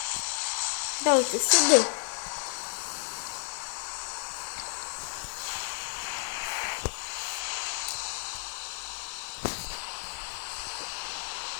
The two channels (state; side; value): silent; right; digital silence